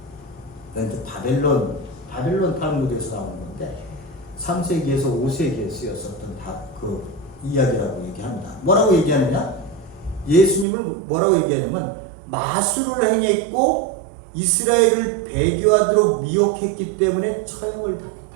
바벨론 탈무드에서 나오는 건데 3세기에서 5세기에 쓰였었던 그 이야기라고 얘기합니다. 뭐라고 얘기하느냐? 예수님을 뭐라고 얘기하냐면 마술을 행했고 이스라엘을 배교하도록 미혹했기 때문에 처형을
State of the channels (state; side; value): drops out; left; at 10.7 s